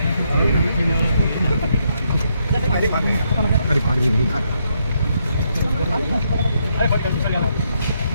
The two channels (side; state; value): both; inverted; correlation -0.77